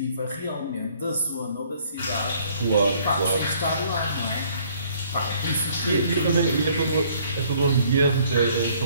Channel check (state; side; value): inverted; both; correlation -0.61